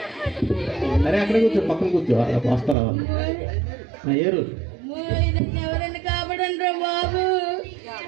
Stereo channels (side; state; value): left; drops out; at 2.8 s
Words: అరే అక్కడ కూర్చో, పక్కన కూర్చో, వస్తారా వాళ్ళు. ఏరు ఎవరైనా కాపాడండి రా బాబు.